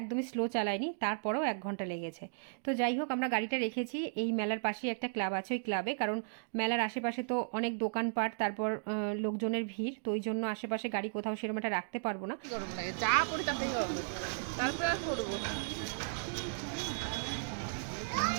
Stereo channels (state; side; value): silent; left; digital silence